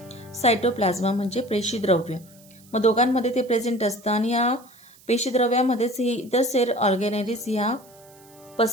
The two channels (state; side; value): noise; right; hiss, 26 dB below the sound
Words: सायटोप्लाझ्मा म्हणजे पेशीद्रव्य. मग दोघांमध्ये ते प्रेझेंट असतं आणि या पेशीद्रव्यामध्येच ही इतर सेल ऑर्गॅनेलिज ह्या